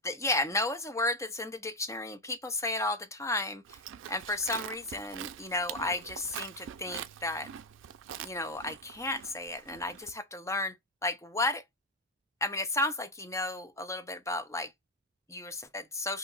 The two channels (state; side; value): normal; both; correlation 0.04